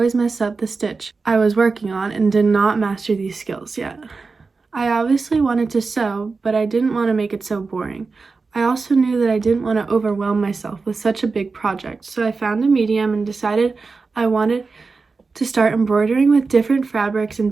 mess up the stitch I was working on and did not master these skills yet. I obviously wanted to sew, but I didn't want to make it so boring. I also knew that I didn't want to overwhelm myself with such a big project, so I found a medium and decided I wanted to start embroidering with different fabrics and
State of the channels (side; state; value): left; quieter; 4.3 dB